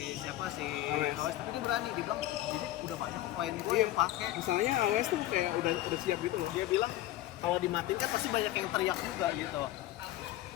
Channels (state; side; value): quieter; right; 15.0 dB